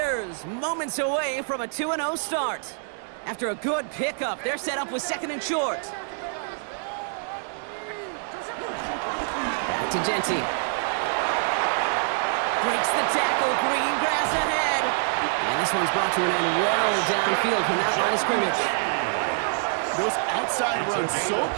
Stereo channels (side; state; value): left; silent; digital silence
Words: moments away from a 2-0 start. After a good pickup, they're set up with 2nd and short. Back to Genty. Breaks the tackle, green grass ahead. And this one's brought to an end well downfield from that line of scrimmage. Those outside runs so